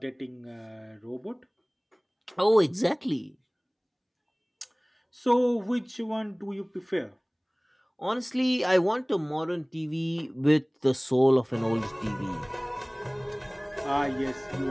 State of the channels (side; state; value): both; identical; correlation 1.00